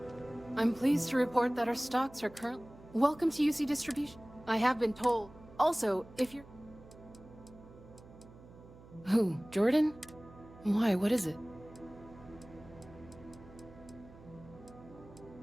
I'm pleased to report that our stocks are currently... Welcome to UC Distribution. I have been told. Also, if you're... Who? Jordan? Why? What is it?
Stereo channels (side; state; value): right; noise; hum, 20 dB below the sound